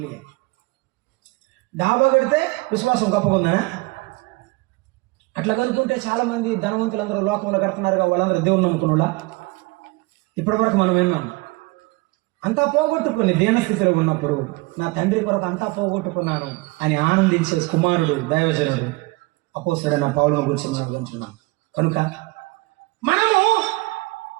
ఇవి. డాబా కడితే విశ్వాసం గొప్పగా ఉందా? అట్లా కనుక్కుంటే చాలా మంది ధనవంతులందరూ లోకంలో కడుతున్నారుగా, వాళ్ళందరూ దేవుని నమ్ముకున్నా. ఇప్పటి వరకు మనం విన్నాం. అంతా పోగొట్టుకుని దీనస్థితిలో ఉన్నప్పుడు నా తండ్రి కొరకు అంతా పోగొట్టుకున్నాను అని ఆనందించే కుమారుడు దైవజనుడు అపోస్తలుడైన పౌలును గురించి మనం వింటున్నాం. కనుక మనము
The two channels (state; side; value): quieter; left; 24.3 dB